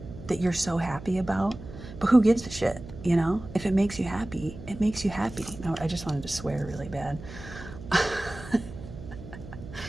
so happy about, but who gives a shit, you know? If it makes you happy, it makes you happy. No, I just wanted to swear really bad.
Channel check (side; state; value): right; noise; hum, 14 dB below the sound